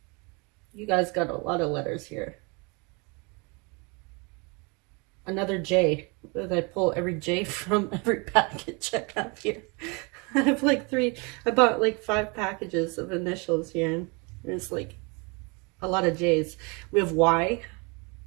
You guys got a lot of letters here. Another J. I pull every J from every package I have here. I have like I bought like 5 packages of initials here, and there's like a lot of J's. We have Y.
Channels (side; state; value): left; quieter; 30.3 dB